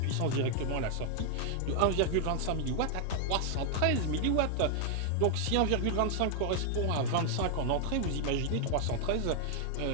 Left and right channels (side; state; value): both; different; correlation 0.00